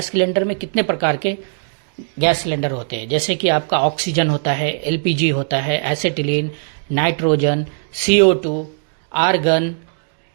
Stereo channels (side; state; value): left; silent; digital silence